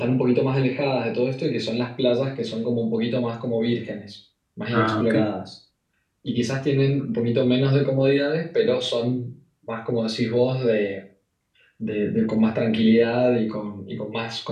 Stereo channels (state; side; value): identical; both; correlation 1.00